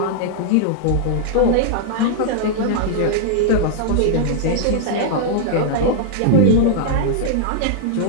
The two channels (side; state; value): both; different; correlation -0.01